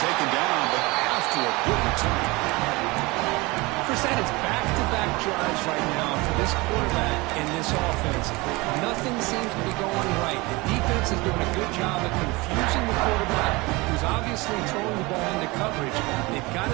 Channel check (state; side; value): quieter; left; 23.7 dB